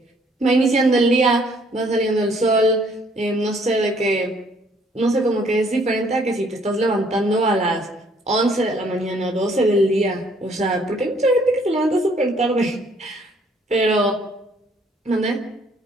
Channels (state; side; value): normal; both; correlation 0.63